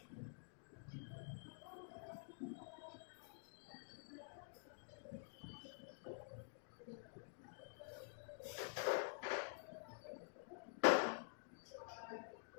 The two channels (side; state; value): right; silent; digital silence